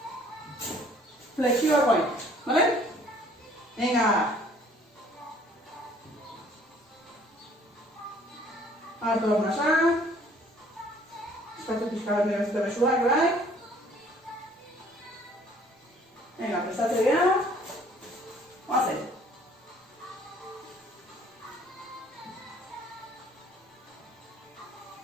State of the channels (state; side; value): normal; both; correlation 0.57